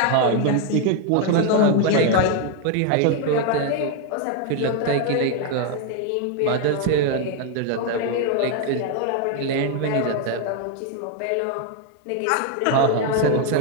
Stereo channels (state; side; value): different; both; correlation 0.01